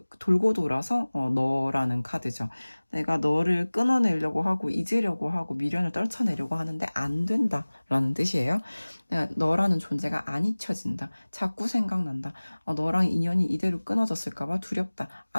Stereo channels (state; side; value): inverted; both; correlation -1.00